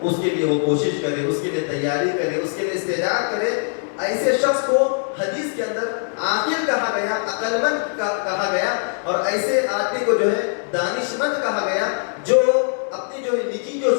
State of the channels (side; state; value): right; silent; 58 dB below the other